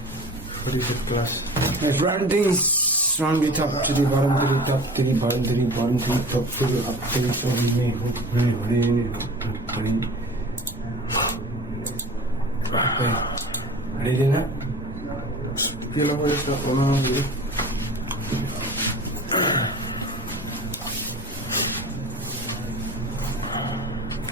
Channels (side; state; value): both; normal; correlation 0.39